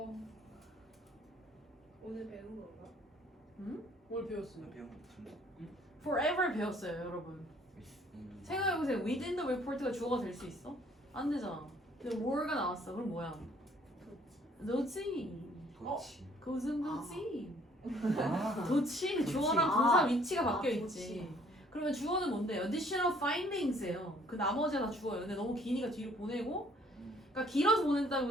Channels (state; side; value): normal; both; correlation 0.60